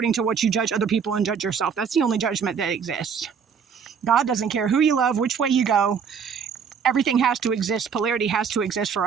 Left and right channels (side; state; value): left; quieter; 6.7 dB